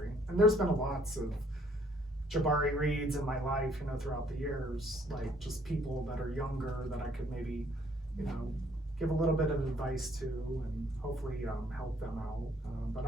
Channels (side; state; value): both; normal; correlation 0.63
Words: And there's been lots of Jabari Reeds in my life, throughout the years, like just people that are younger that I could maybe, give a little bit of advice to, and hopefully help them out. But